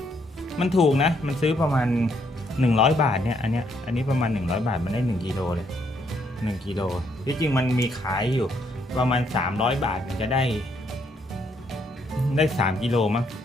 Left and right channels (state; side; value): normal; both; correlation 0.72